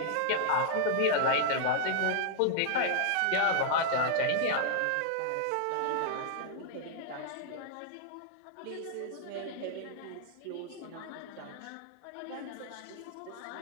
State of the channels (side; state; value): both; different; correlation 0.00